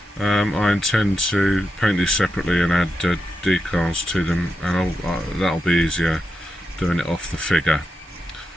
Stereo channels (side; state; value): both; normal; correlation 0.87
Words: I intend to paint these separately and add decals to them, and that'll be easier doing it off the figure.